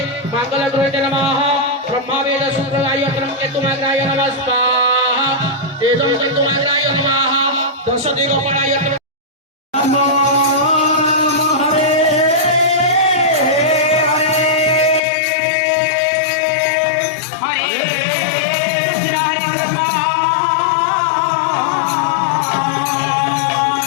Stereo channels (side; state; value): right; drops out; at 15.0 s